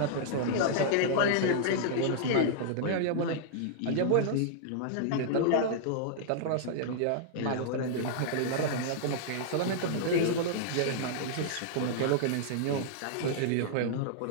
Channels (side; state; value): both; different; correlation -0.02